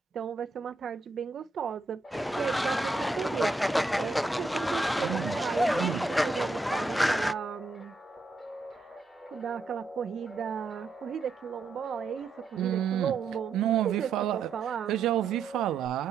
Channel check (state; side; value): quieter; left; 3.6 dB